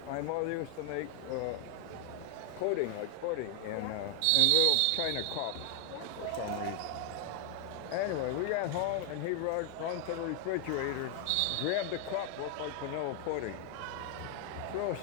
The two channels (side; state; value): both; different; correlation 0.00